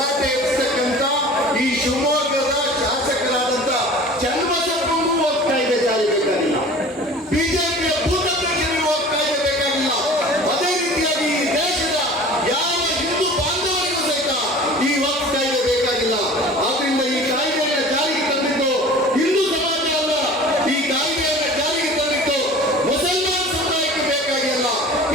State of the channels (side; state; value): both; normal; correlation 0.42